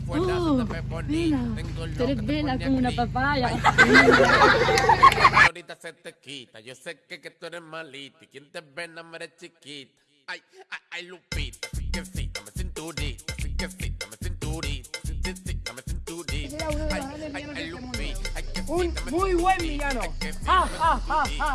se te ve bonita. Tengo Tú eres vela como una papaya. Ahorita se te quita. Yo sé que tú eres malita. Y quien te ve no me eres chiquita. Ay, ay, ay, Lupita. Sí que sí, dame cinturita. Sí que sí, dame cinturita. Sí que sí, dame cinturita. Ay, ay, ay, Lupita. Un muy buen villano. ¡Ja, ja, ja, ja,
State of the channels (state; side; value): identical; both; correlation 1.00